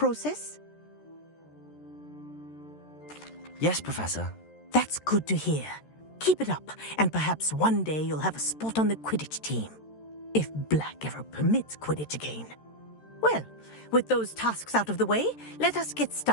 Yes, Professor. That's good to hear. Keep it up, and perhaps one day you'll have a spot on the Quidditch team. If Black ever permits Quidditch again. Well, with those tasks out of the way, let us get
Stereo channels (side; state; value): right; late; 13 ms